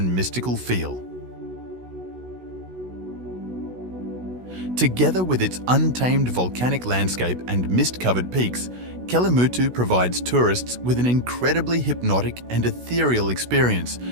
mystical feel. Together with its untamed volcanic landscape and mist-covered peaks, Kelimutu provides tourists with an incredibly hypnotic and ethereal experience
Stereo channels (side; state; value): left; late; 16 ms